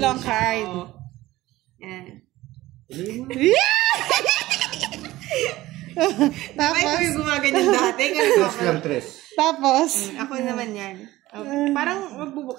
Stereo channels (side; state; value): left; quieter; 17.1 dB